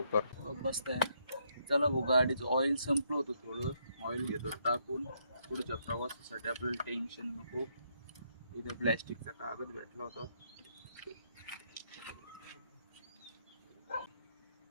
बसताय. चला भाऊ, गाडीचं ऑइल संपलं होतं थोडं. ऑइल घेतो टाकून. पुढच्या प्रवासासाठी आपल्याला टेन्शन नको. इथे प्लॅस्टिकचा कागद भेटला होता.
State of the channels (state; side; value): inverted; both; correlation -0.74